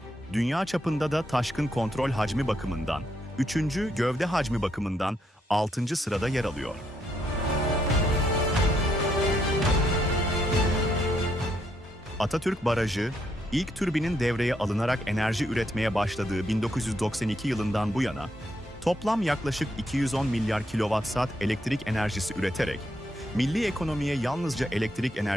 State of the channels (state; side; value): normal; both; correlation 0.76